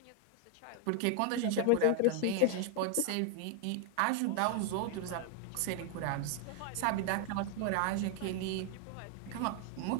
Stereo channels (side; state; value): both; different; correlation 0.00